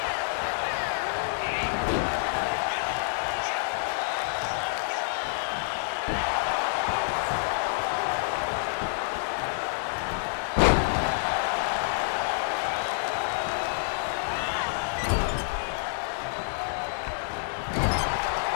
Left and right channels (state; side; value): silent; right; 59 dB below the other